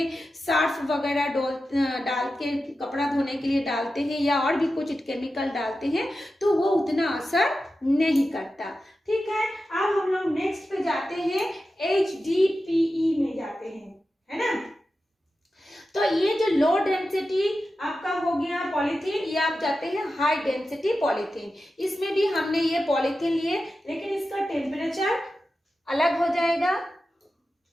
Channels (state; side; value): normal; both; correlation 0.92